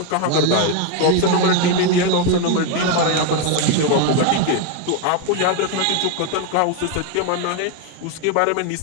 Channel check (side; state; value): both; different; correlation 0.01